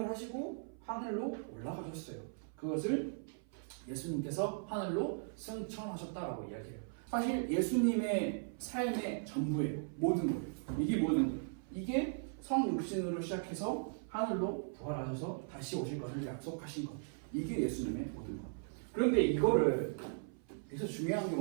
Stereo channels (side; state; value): left; silent; 52 dB below the other